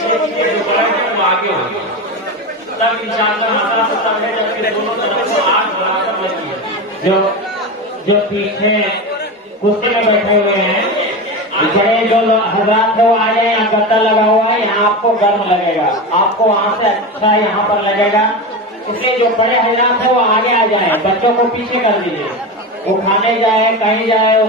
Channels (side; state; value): both; normal; correlation 0.22